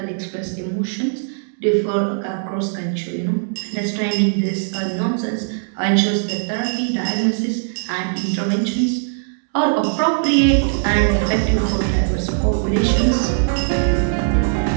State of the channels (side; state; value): left; silent; digital silence